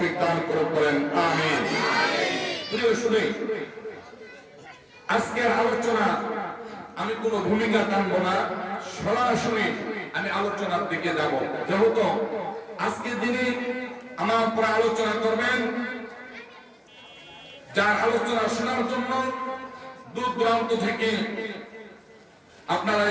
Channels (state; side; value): identical; both; correlation 1.00